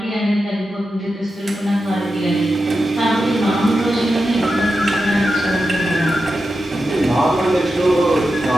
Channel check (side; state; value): both; normal; correlation 0.90